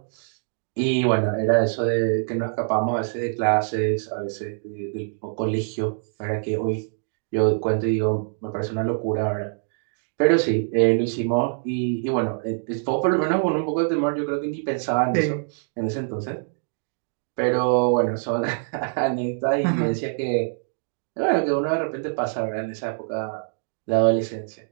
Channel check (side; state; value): left; silent; digital silence